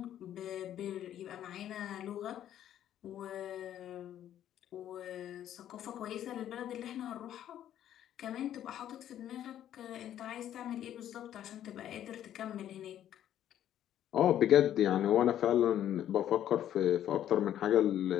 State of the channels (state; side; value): quieter; right; 11.1 dB